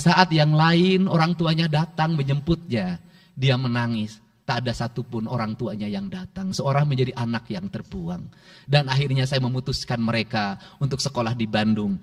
saat yang lain orang tuanya datang menjemputnya, dia menangis. Tak ada satupun orang tuanya yang datang. Seorang menjadi anak yang terbuang. Dan akhirnya saya memutuskan mereka untuk sekolah di Bandung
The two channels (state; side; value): identical; both; correlation 1.00